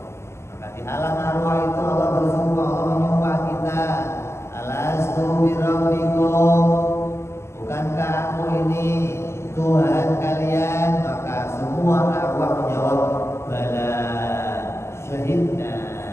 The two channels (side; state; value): right; late; 0.13 ms